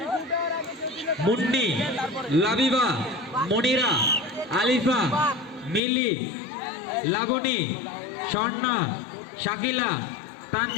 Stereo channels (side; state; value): right; drops out; at 5.8 s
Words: মুন্নি, লাবিবা, মনিরা, আলিফা, মিলি, লাবণী, স্বর্ণা, শাকিলা,